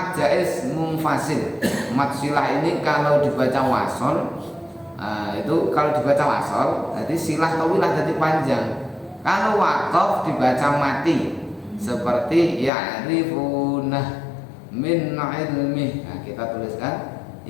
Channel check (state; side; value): drops out; right; at 12.7 s